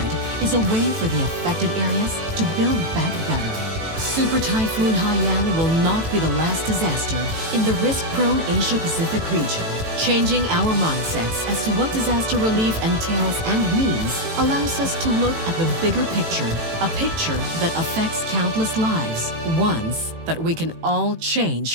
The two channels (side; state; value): left; late; 18 ms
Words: is a way for the affected areas to build back better. Super Typhoon Haiyan will not be the last disaster in the risk-prone Asia-Pacific region. Changing our mindsets as to what disaster relief entails and means allows us to look at the bigger picture, a picture that affects countless lives, ones that we can all